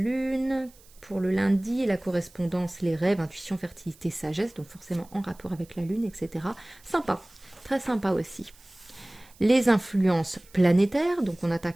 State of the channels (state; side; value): noise; right; hiss, 26 dB below the sound